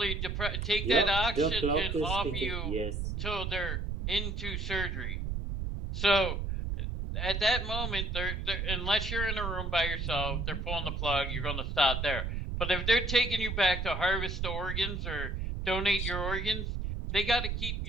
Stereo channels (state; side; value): noise; right; rumble, 3 dB below the sound